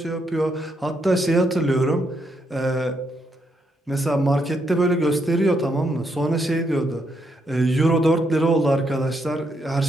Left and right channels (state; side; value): normal; both; correlation 0.78